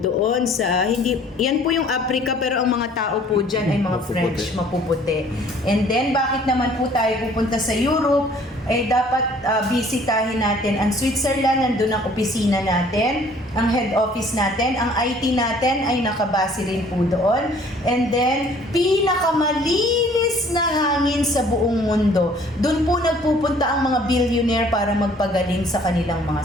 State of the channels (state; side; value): normal; both; correlation 0.56